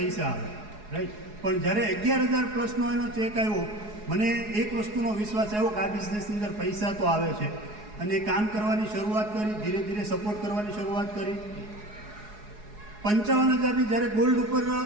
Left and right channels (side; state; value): left; late; 4.8 ms